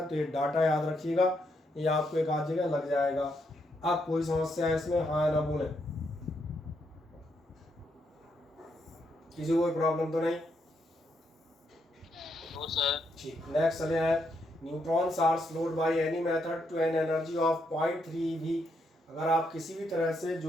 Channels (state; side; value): normal; both; correlation 0.78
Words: तो ये डाटा याद रखिएगा, ये आपको एक आध जगह लग जाएगा। अब कोई समस्या है इसमें, हाँ ना बोले, किसी को कोई प्रॉब्लम तो नहीं? No sir. ठीक, नेक्स्ट चले हैं। Neutrons are slowed by any method to an energy of 0.3 eV। अगर आप किसी भी तरह से